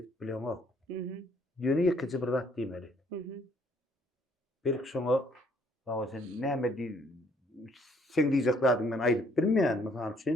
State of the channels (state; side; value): normal; both; correlation 0.64